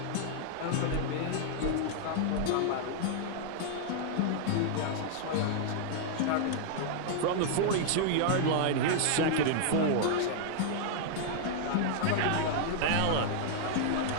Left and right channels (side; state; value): both; different; correlation -0.01